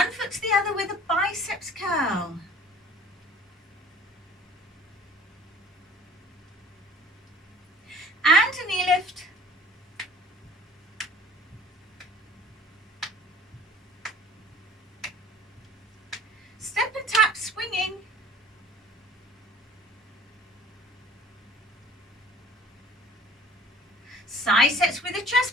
foot to the other with a biceps curl. And a knee lift. Step and tap, swinging. Side sets with a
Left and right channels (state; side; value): normal; both; correlation 0.48